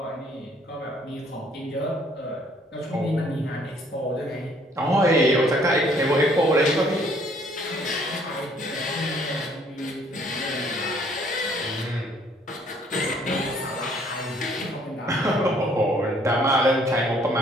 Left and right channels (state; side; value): normal; both; correlation 0.62